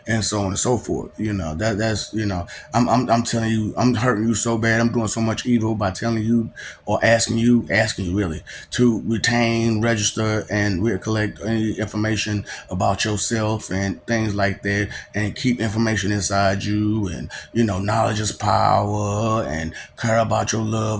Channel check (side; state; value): both; identical; correlation 1.00